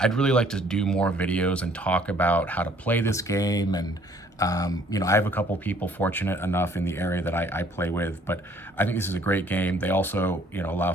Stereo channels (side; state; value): both; normal; correlation 0.60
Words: really like to do more videos and talk about how to play this game, and I have a couple people fortunate enough in the area that I play with, but I think this is a great game. They also, allow